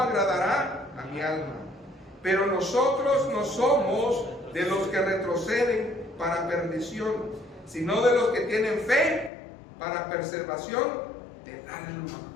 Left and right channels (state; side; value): drops out; right; at 9.3 s